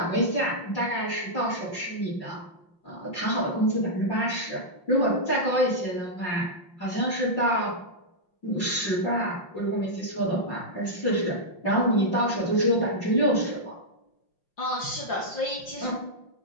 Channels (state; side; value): late; right; 5.7 ms